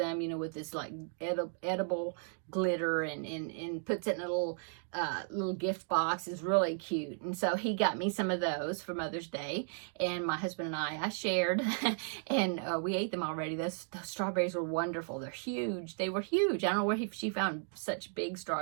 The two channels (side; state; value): left; silent; 55 dB below the other